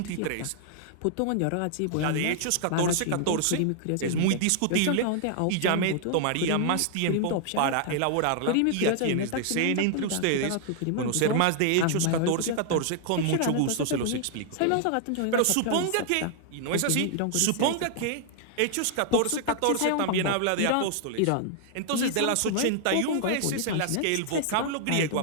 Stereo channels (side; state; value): both; different; correlation 0.00